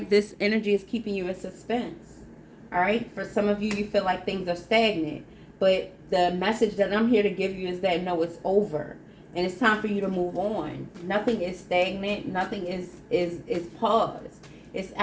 this energy is keeping you in suspense. All right, for some of you, you feel like things are stagnant. But the message that I'm here to give you is that no, it's over. And it's time for you to move on. Nothing is stagnant. Nothing is paused. It's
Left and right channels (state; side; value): identical; both; correlation 1.00